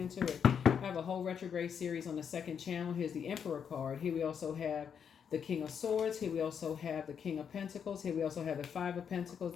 I have a whole retrograde series on the second channel. Here's the Emperor card. Here we also have the King of Swords. Here we also have the King of Pentacles. Here we also have the Five of Pentacles,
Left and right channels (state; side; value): quieter; right; 7.4 dB